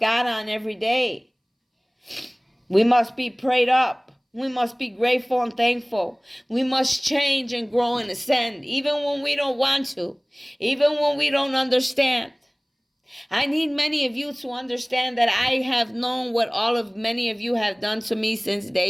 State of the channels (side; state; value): both; identical; correlation 1.00